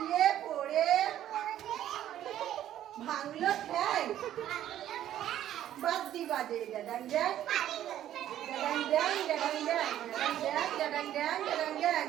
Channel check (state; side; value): quieter; left; 11.9 dB